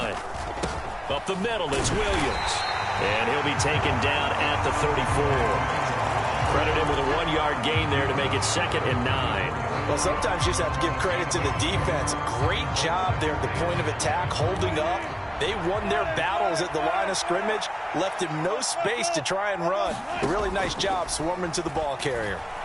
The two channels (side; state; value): both; identical; correlation 1.00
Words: Up the middle, it's Williams. And he'll be taken down at the 34. Credit him with a 1-yard gain there to make it 2nd and 9. Well, sometimes you just have to give credit to the defense. Great job there at the point of attack, holding up. They won their battles at the line of scrimmage, left him no space to try and run. A really nice job swarming to the ball carrier.